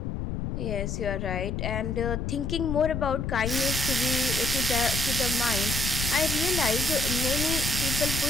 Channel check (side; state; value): left; noise; rumble, 3 dB below the sound